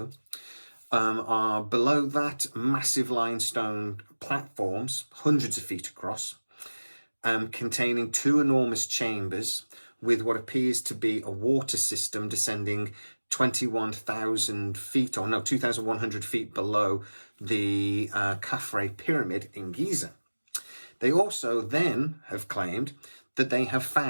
Are below that massive limestone platforms, hundreds of feet across, containing 2 enormous chambers with what appears to be a water system descending 21,000 feet, 2,100 feet below the Khafre pyramid in Giza. They also then have claimed that they have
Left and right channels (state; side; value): inverted; both; correlation -1.00